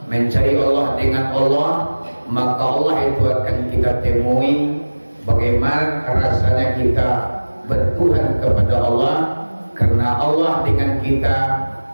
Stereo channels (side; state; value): both; inverted; correlation -1.00